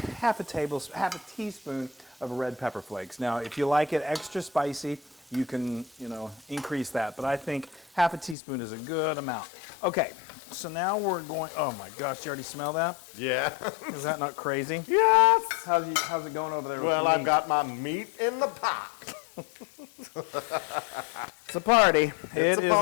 a teaspoon of red pepper flakes. Now, if you like it extra spicy, you can, increase that. But I think 1/2 teaspoon is a good amount. Okay, so now we're going, oh my gosh, you already smell that? Yeah. Is that not crazy? Yes. How's it going over there? Well, I've got my meat in the pot. It's a party. It's a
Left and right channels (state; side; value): drops out; right; at 8.3 s